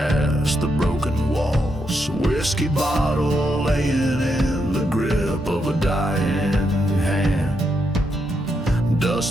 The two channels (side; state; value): both; normal; correlation 0.81